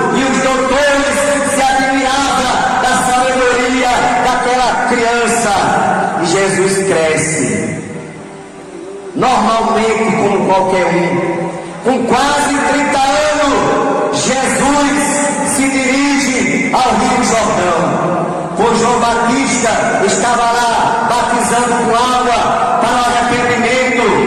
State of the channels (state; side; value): identical; both; correlation 1.00